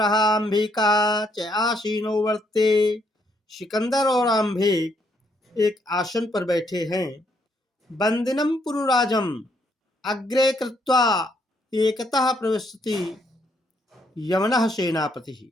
अंबिका च आसीनो वर्ते, सिकंदर और अंबिक एक आसन पर बैठे हैं। बंदिनम पुरुराजम अग्रे कृत्वा एकतः प्रविशति यमनः सेनापति।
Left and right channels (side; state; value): both; normal; correlation 0.73